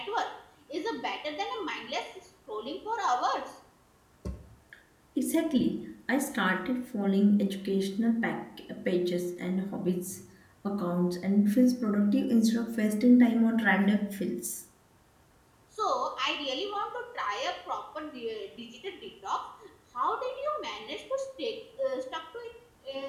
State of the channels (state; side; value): identical; both; correlation 1.00